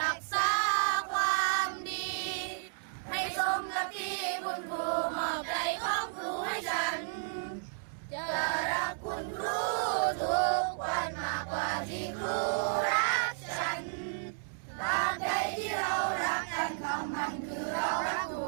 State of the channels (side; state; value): left; silent; digital silence